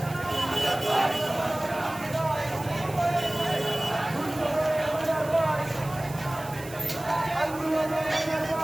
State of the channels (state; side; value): noise; right; hiss, 17 dB below the sound